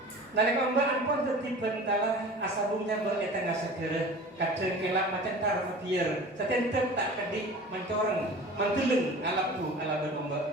nalek ombak ampun tertibat bentalah asabungnya beretengah segera kadang kelak macam tar biar setentet tak kedi mencoreng menteleng alapu ala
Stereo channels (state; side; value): normal; both; correlation 0.39